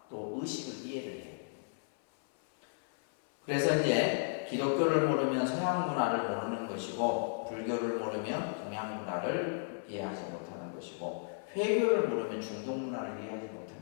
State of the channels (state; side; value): silent; right; 55 dB below the other